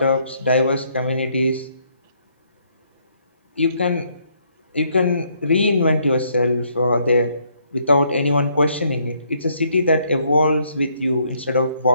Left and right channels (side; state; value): both; inverted; correlation -0.70